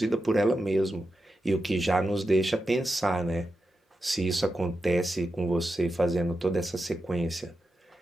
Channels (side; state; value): both; normal; correlation 0.89